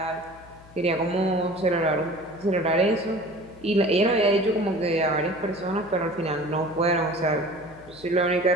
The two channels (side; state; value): left; noise; hum, 23 dB below the sound